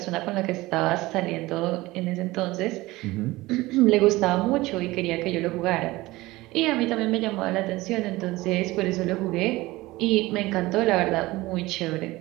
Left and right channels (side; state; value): left; quieter; 19.6 dB